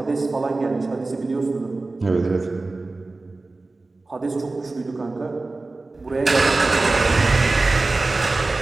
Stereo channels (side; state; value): left; quieter; 3.3 dB